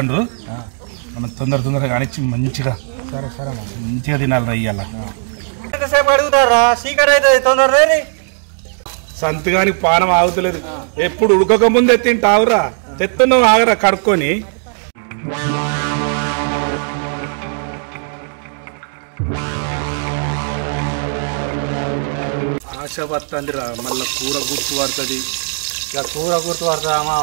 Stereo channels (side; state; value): left; silent; 60 dB below the other